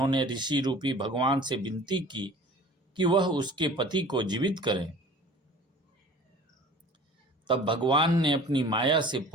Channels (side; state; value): both; normal; correlation 0.44